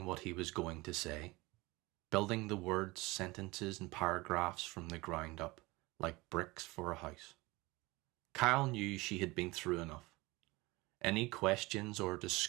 what he was going to say, building the words, sentences, and paragraphs from the ground up, like bricks for a house. Kyle knew she had been through enough. Any questions or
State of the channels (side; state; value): left; quieter; 22.2 dB